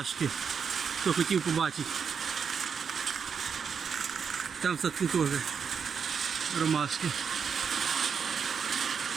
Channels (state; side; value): quieter; left; 6.5 dB